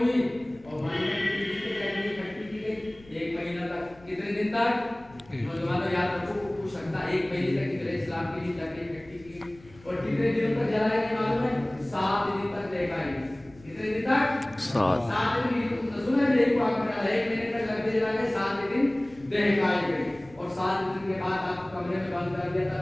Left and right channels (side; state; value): left; noise; rumble, 25 dB below the sound